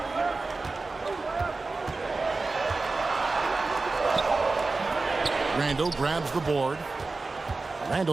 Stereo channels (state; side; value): quieter; left; 3.7 dB